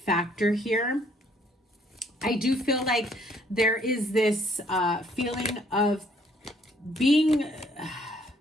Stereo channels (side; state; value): both; normal; correlation 0.64